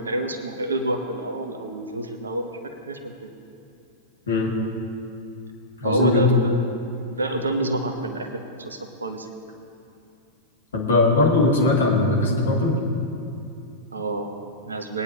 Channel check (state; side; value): normal; both; correlation -0.18